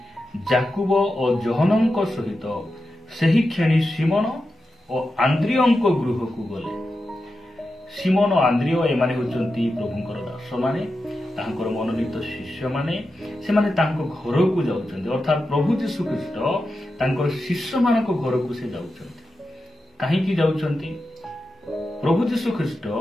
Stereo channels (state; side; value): normal; both; correlation 0.90